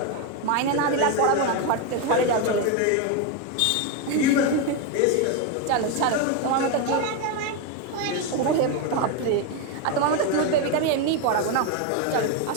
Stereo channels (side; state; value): both; different; correlation 0.02